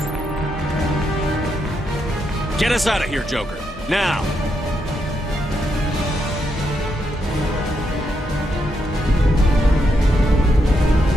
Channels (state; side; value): normal; both; correlation 0.80